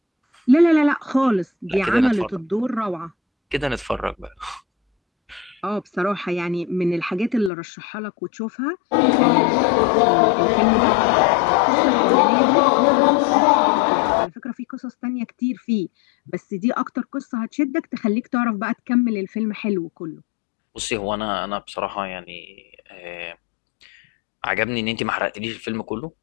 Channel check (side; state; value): right; drops out; at 7.5 s